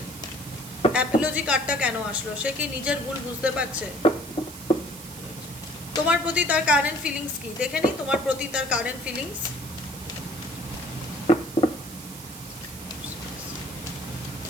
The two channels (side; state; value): right; noise; hiss, 14 dB below the sound